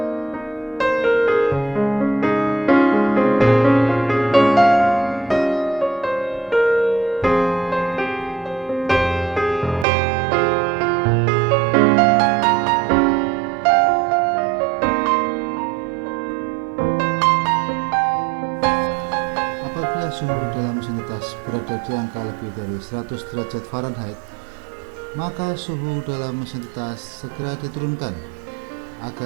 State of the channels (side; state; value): left; drops out; at 9.9 s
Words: dari 100 derajat Fahrenheit, maka suhu dalam mesin tetas segera diturunkan